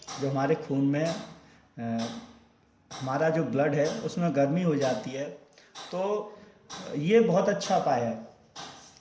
जो हमारे खून में हमारा जो ब्लड है उसमें गर्मी हो जाती है। तो ये बहुत अच्छा उपाय है,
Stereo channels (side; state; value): both; identical; correlation 1.00